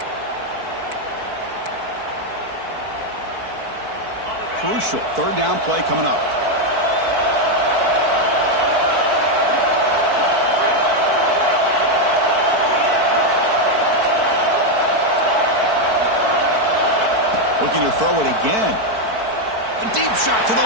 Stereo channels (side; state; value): left; late; 4.5 ms